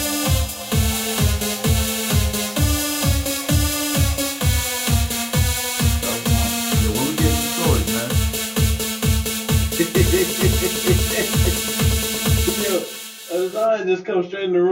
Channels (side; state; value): both; identical; correlation 1.00